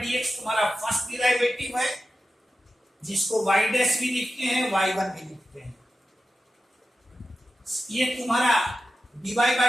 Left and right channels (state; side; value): normal; both; correlation 0.92